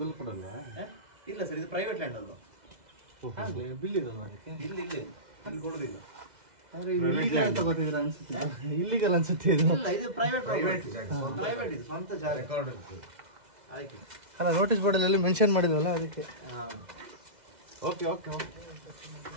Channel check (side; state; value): left; late; 2.0 ms